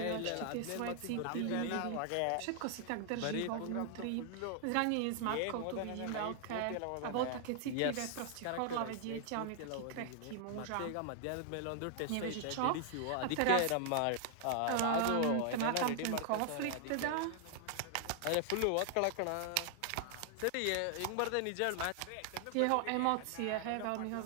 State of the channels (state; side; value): different; both; correlation 0.00